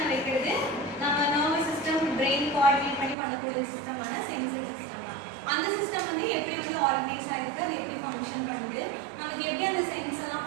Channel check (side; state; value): left; drops out; at 3.2 s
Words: வைக்கிறது நம்ம நர்வஸ் சிஸ்டம் பிரெயின் கோஆர்டினேட் பண்ணி பண்ணக்கூடிய சிஸ்டமான சென்சரி சிஸ்டம். அந்த சிஸ்டம் வந்து எப்படி வந்து ஆர்கனைஸ் ஆயிருக்கு, அது எப்படி ஃபங்க்ஷன் பண்ணுது, நமக்கு எப்படி அந்த சென்ஸ்